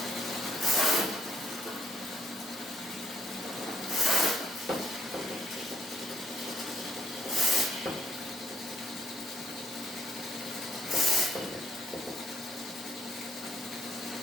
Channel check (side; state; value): both; normal; correlation 0.70